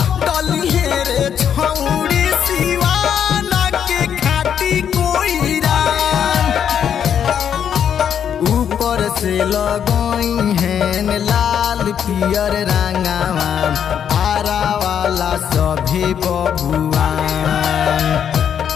डली है छौड़ी सिवाना के खाटी कोईरा। ऊपर से लगई हैं लाल पियर रंगावा आरा वाला सभे बबुआ।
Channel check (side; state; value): right; quieter; 8.5 dB